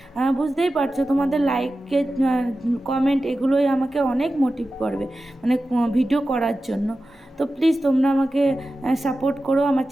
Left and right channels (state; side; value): normal; both; correlation 0.94